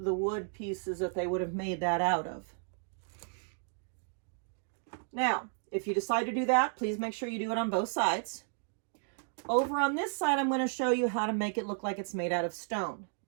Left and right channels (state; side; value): silent; left; 56 dB below the other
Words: wood pieces that they would have made that out of. Now, if you decide to do that, please make sure you do it on both sides. Over on this side, I'm going to show you how to make it look like it's made out of stone.